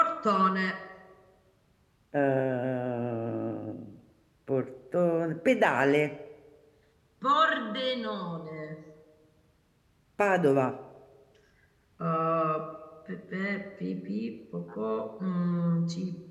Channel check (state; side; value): identical; both; correlation 1.00